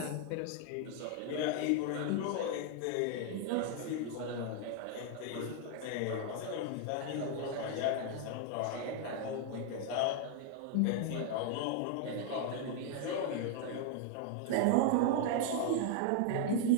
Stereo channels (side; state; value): both; different; correlation 0.00